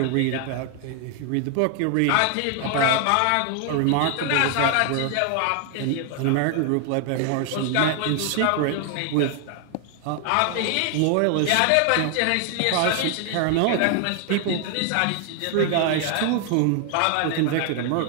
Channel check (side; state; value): both; different; correlation 0.00